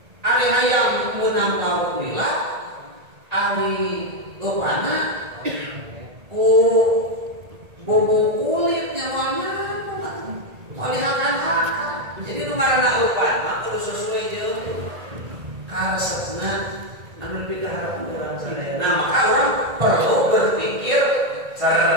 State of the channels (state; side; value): late; left; 1.8 ms